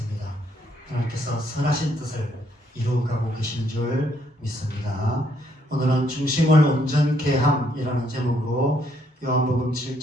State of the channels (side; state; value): both; normal; correlation 0.71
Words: 하나님께서 선하신 뜻을 이루어가고 계시는 줄 믿습니다. 오늘은 중심을 온전케 함이라는 제목으로 요한복음